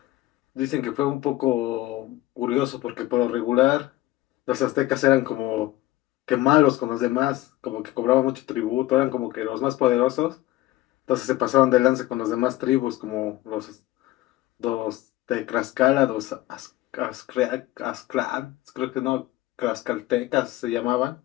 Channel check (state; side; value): quieter; right; 16.9 dB